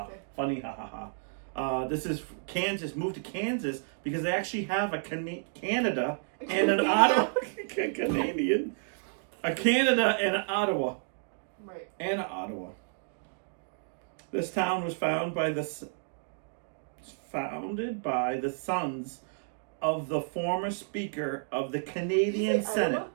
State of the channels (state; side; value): silent; left; digital silence